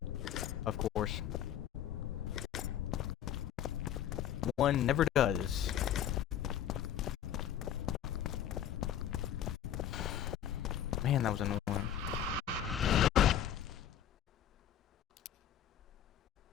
of course. One never does. Man, that was annoying.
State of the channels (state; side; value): quieter; right; 10.2 dB